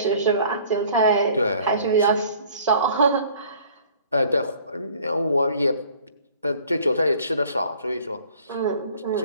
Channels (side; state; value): both; inverted; correlation -0.53